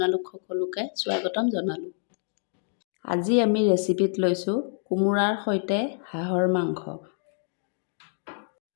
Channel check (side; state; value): right; silent; digital silence